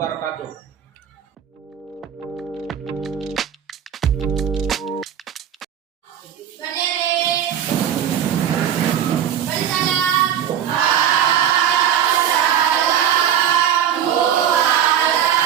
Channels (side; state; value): left; quieter; 9.6 dB